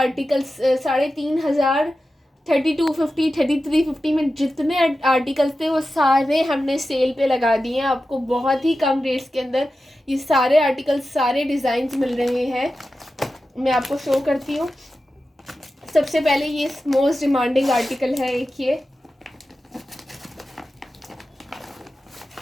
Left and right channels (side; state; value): both; normal; correlation 0.93